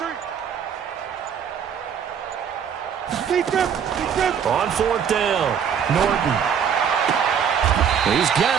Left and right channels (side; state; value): left; quieter; 7.8 dB